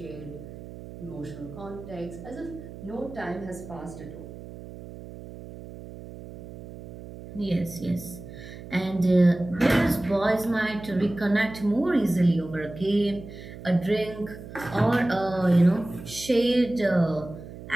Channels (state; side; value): noise; right; hum, 14 dB below the sound